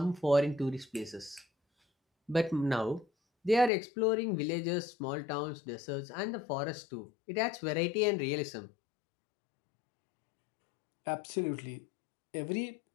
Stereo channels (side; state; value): right; drops out; at 3.7 s